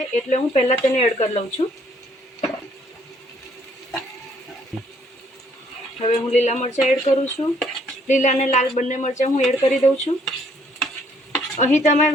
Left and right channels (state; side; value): normal; both; correlation 0.66